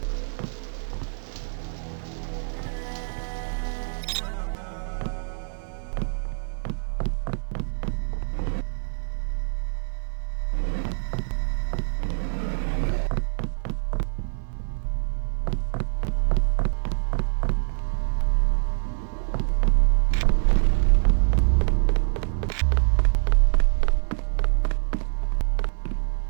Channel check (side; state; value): left; silent; 57 dB below the other